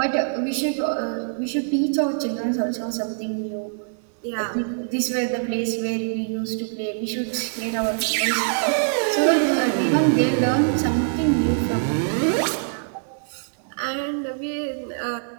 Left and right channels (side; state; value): left; silent; digital silence